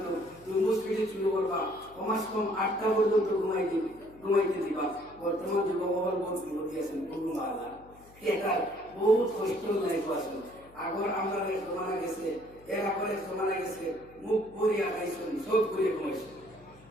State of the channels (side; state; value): left; noise; hum, 24 dB below the sound